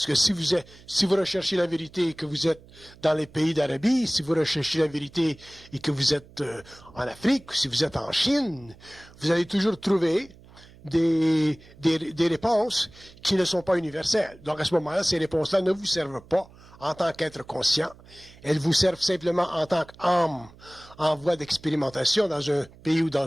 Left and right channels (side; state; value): right; noise; hum, 23 dB below the sound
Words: que si vous recherchez la vérité et que vous êtes dans les pays d'Arabie, si vous recherchez la vérité et que vous êtes en Afrique, si vous êtes en Chine, vous allez toujours trouver des réponses qui ne sont pas universelles. Donc à ce moment-là, ces réponses-là ne vous servent pas en tant qu'être conscient. Elles vous servent simplement en tant qu'âme en voie d'expérimentation dans un pays ou